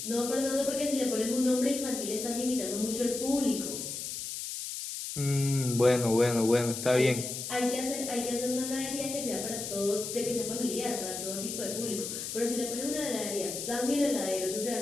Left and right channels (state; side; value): noise; left; hiss, 6 dB below the sound